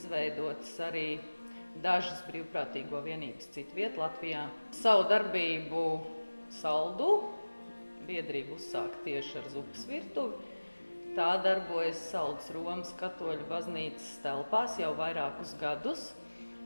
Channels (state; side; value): inverted; both; correlation -1.00